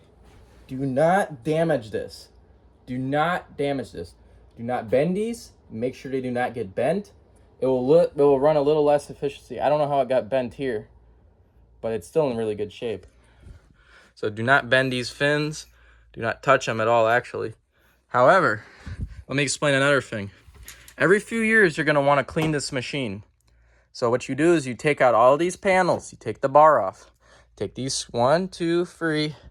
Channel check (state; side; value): identical; both; correlation 1.00